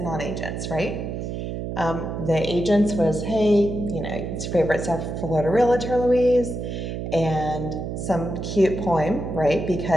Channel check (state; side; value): noise; right; hum, 5 dB below the sound